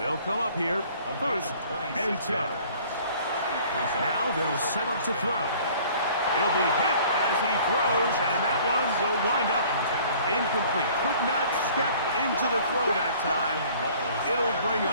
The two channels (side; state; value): both; inverted; correlation -0.52